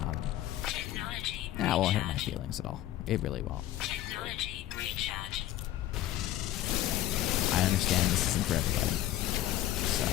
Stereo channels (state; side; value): quieter; right; 13.6 dB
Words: That won't hurt my feelings at all. It really won't. I understand this isn't for everybody. So,